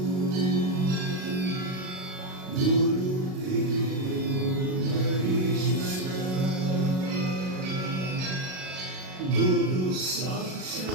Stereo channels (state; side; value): late; left; 38 ms